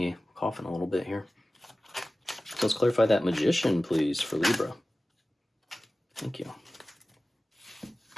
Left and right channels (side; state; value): both; normal; correlation 0.96